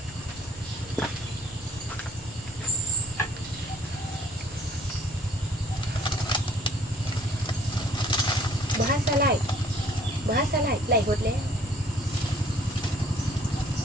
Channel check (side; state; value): both; normal; correlation 0.58